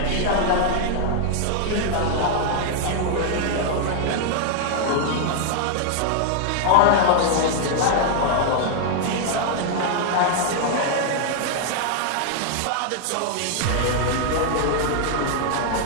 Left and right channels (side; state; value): both; different; correlation 0.00